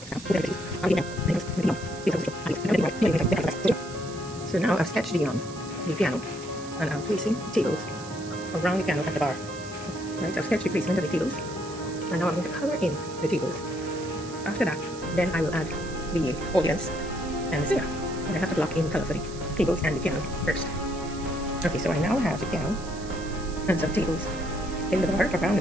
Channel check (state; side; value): noise; right; hiss, 16 dB below the sound